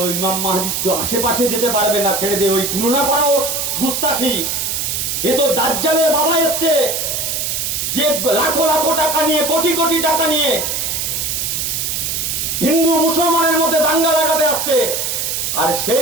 ওই ইমাম মাহদি তো আশেপাশে যেতে পারবে না, ছেড়ে দিয়ে ওই তুলনা করাও গুস্তাখি। এ তো দাজ্জালের বাবা এসছে, যে লাখো লাখো টাকা নিয়ে, কোটি কোটি টাকা নিয়ে হিন্দু মুসলমানের মধ্যে দাঙ্গা লাগাতে আসছে। আর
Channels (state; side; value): noise; right; hiss, 1 dB below the sound